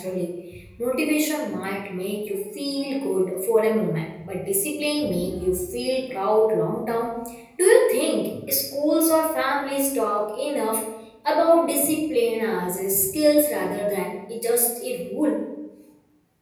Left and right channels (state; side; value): identical; both; correlation 1.00